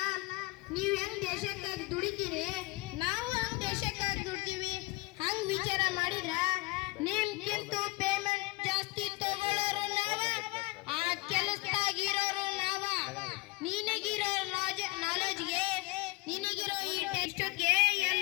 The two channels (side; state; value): right; quieter; 22.2 dB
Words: ನೀವ್ ಹೆಂಗ್ ದೇಶಕ್ಕಾಗಿ ದುಡಿತೀರಿ, ನಾವು ಹಂಗ್ ದೇಶಕ್ಕಾಗಿ ದುಡ್ತೀವಿ. ಹಂಗ್ ವಿಚಾರ ಮಾಡಿದ್ರ ನಿಮ್ಗಿಂತ